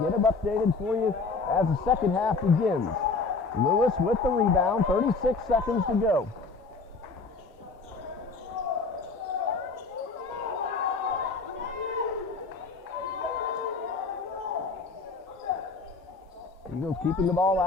them updated for you as the second half begins. Lewis with the rebound, 36 seconds to go. Eagles keeping the ball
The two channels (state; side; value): quieter; right; 4.2 dB